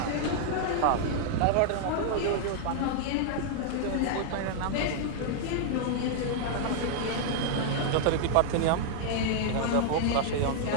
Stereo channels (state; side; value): different; both; correlation -0.01